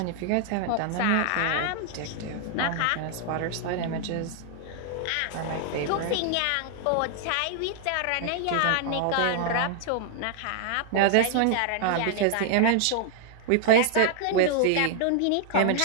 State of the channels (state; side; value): different; both; correlation -0.01